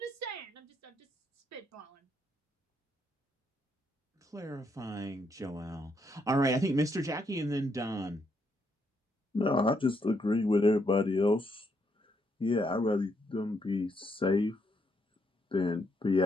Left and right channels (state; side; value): normal; both; correlation 0.76